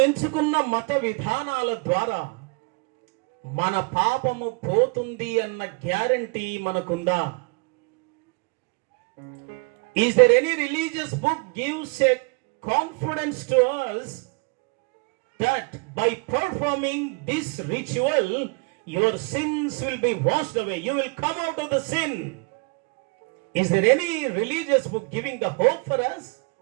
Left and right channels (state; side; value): quieter; left; 32.4 dB